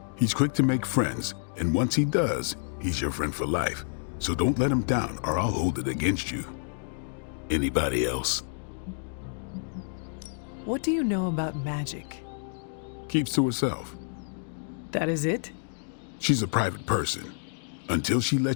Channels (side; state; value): right; silent; digital silence